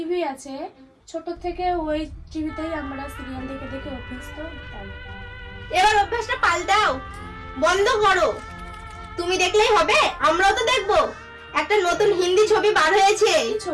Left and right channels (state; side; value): identical; both; correlation 1.00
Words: আছে, ছোট থেকে ওই টিভিতেই আমরা সিরিয়াল দেখে দেখে অভ্যস্ত। তাই এবার অভ্যাসটা পাল্টাও, বন্ধ করো। তুমি দেখলেই হবে, আমরাও তো দেখবো। একটা নতুন হিন্দি ছবি বার হয়েছে, কি